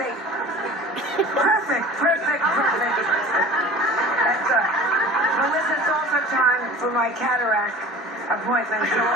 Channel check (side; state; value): both; normal; correlation 0.40